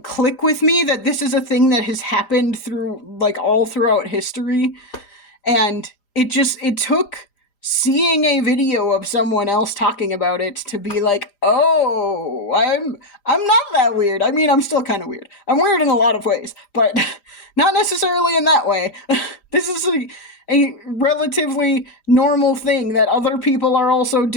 click with me that this is a thing that has happened through, like, all throughout history. And it took seeing a video of someone else talking about it to be like, oh, I'm not that weird. I mean, I'm still kind of weird. I'm weird in a lot of ways, but not necessarily in that way. This is a relatively normal thing that other people are also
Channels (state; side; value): late; right; 5.0 ms